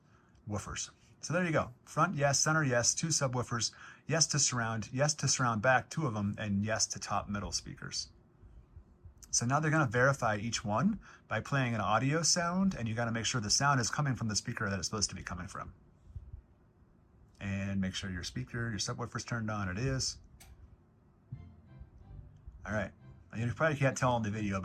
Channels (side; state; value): both; identical; correlation 1.00